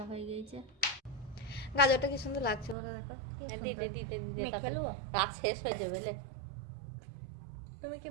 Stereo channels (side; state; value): left; drops out; at 2.8 s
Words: হয়ে গেছে। গাজরটা কি সুন্দর লাগছে বলো, দেখো কি সুন্দর। মেখে নেবো? রাত শেষ হয়ে যাবে লে। তুমি কি